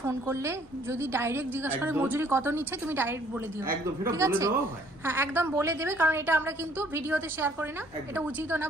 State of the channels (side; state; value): both; normal; correlation 0.60